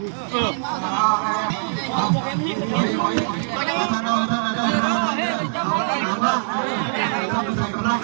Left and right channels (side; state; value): left; silent; digital silence